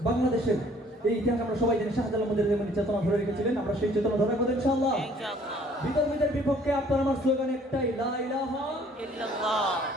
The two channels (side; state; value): both; normal; correlation 0.57